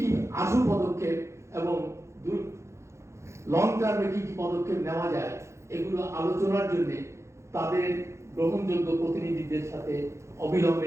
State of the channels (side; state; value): left; late; 0.14 ms